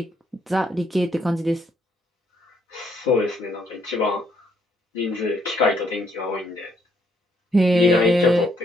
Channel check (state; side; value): normal; both; correlation 0.71